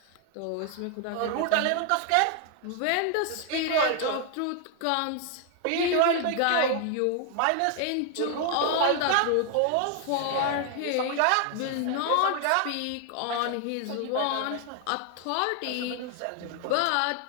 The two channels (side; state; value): both; different; correlation 0.00